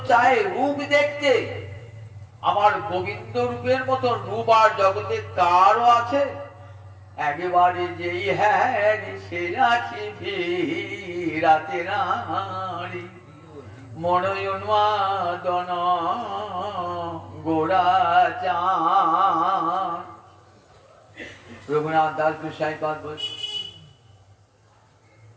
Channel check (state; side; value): identical; both; correlation 1.00